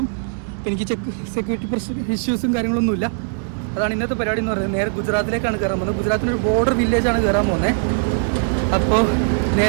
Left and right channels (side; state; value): left; silent; digital silence